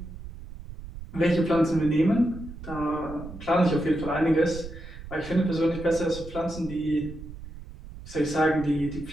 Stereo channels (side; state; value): right; noise; rumble, 13 dB below the sound